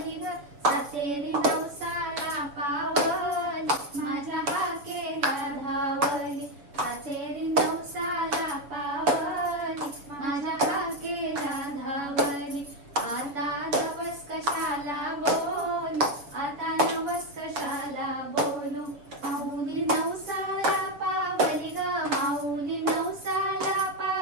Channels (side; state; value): left; late; 7.0 ms